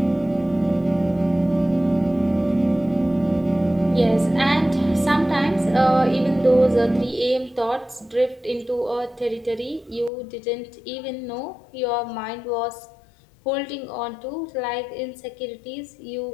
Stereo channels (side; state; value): right; drops out; at 10.1 s